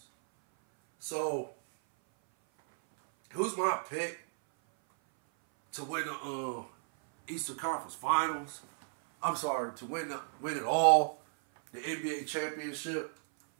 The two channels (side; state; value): left; silent; 55 dB below the other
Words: So, who's my pick to win the Eastern Conference Finals? I'm sorry, to win it all, the NBA championship.